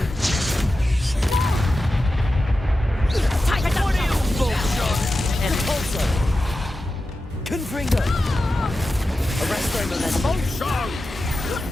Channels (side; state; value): both; normal; correlation 0.92